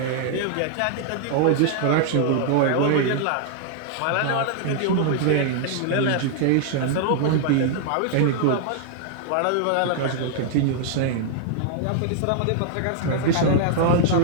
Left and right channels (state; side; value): different; both; correlation -0.01